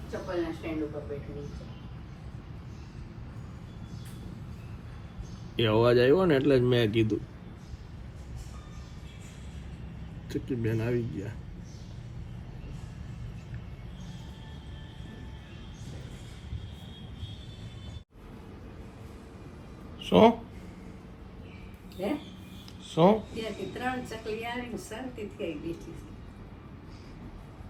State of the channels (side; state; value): both; identical; correlation 1.00